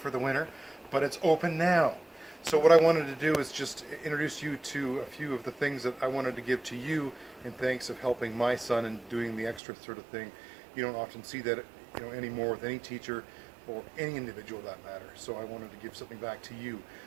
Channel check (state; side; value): drops out; left; at 9.6 s